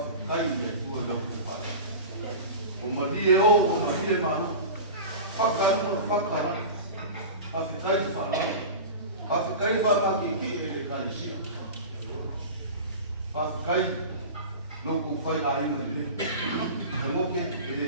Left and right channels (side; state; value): both; inverted; correlation -0.31